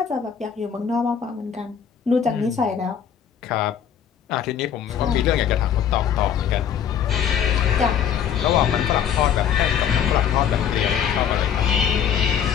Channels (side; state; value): right; quieter; 8.5 dB